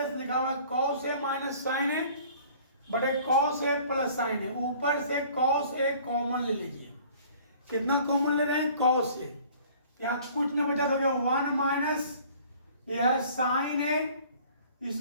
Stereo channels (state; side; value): inverted; both; correlation -0.51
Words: लिखा हुआ है कॉस ए माइनस साइन ए बटे कॉस ए प्लस साइन ए। ऊपर से कॉस ए कॉमन ले लीजिए। कितना कॉमन ले रहे हैं कॉस ए, यहाँ कुछ ना बचा तो 1 माइनस यह है साइन ए,